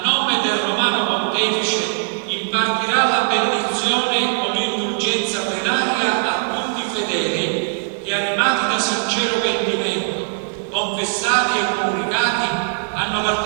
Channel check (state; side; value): silent; left; digital silence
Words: nome del Romano Pontefice, impartirà la benedizione con l'indulgenza plenaria a tutti i fedeli che, animati da sincero pentimento, confessati e comunicati, hanno